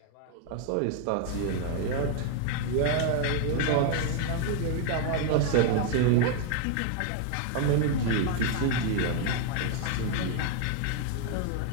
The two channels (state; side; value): different; both; correlation 0.00